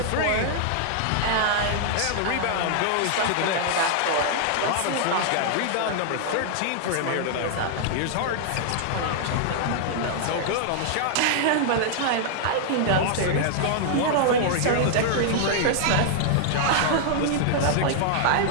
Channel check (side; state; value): both; different; correlation -0.01